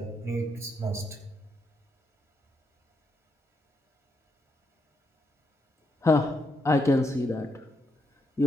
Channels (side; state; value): both; normal; correlation 0.80